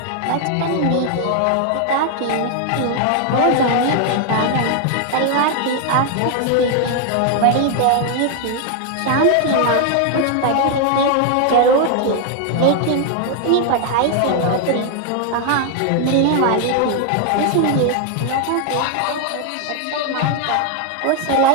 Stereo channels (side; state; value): both; different; correlation 0.00